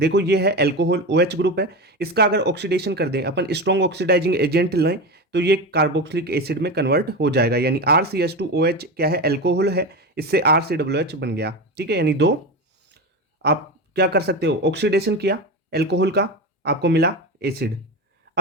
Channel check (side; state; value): both; normal; correlation 0.21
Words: ये है एल्कोहल, OH ग्रुप है। इसका अगर ऑक्सीडेशन कर दें अपन, स्ट्रॉन्ग ऑक्सीडाइजिंग एजेंट लें, तो ये कार्बोक्सिलिक एसिड में कन्वर्ट हो जाएगा। यानी RCH2OH क्या है, एल्कोहल है, इससे RCOOH बन गया। ठीक है, यानी दो आप क्या कर सकते हो, ऑक्सीडेशन किया एल्कोहल का, आपको मिला एसिड।